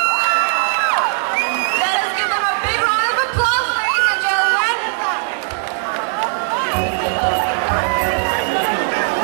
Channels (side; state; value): left; silent; digital silence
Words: Let us give them a big round of applause, ladies and gentlemen.